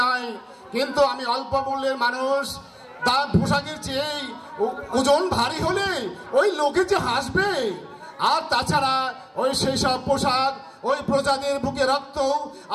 নয়, কিন্তু আমি অল্প মূল্যের মানুষ। তার পোশাকের চেয়ে ওজন ভারী হলে ওই লোকে যে হাসবে। আর তাছাড়া ওই সেই সব পোশাক ওই প্রজাদের বুকে রক্ত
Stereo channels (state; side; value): identical; both; correlation 1.00